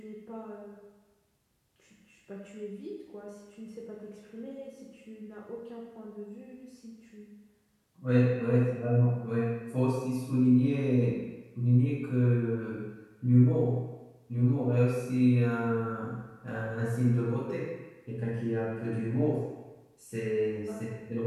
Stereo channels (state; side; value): identical; both; correlation 1.00